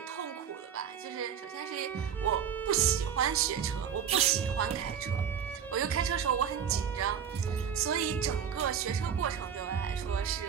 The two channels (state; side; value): quieter; left; 8.2 dB